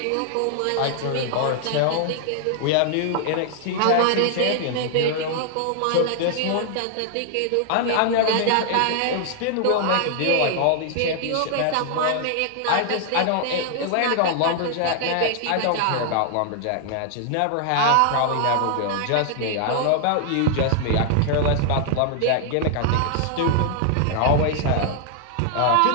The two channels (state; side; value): different; both; correlation 0.00